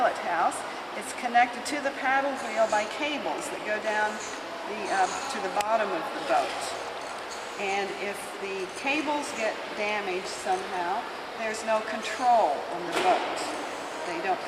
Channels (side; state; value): both; identical; correlation 1.00